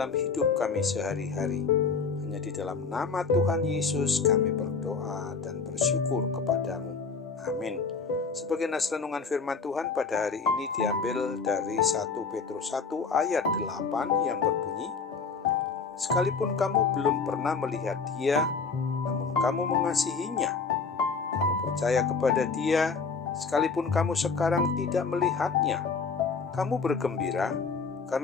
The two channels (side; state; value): right; quieter; 5.0 dB